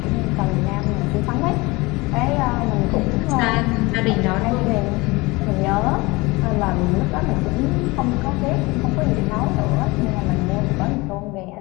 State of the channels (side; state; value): right; quieter; 23.6 dB